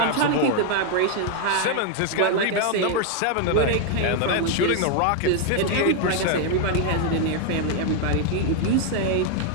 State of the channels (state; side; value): different; both; correlation 0.00